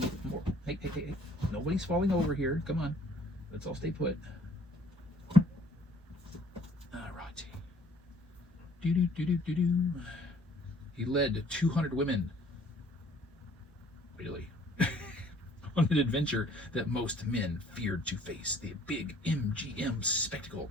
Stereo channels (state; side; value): normal; both; correlation 0.57